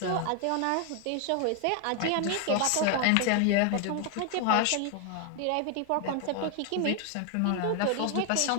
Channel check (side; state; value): both; different; correlation 0.01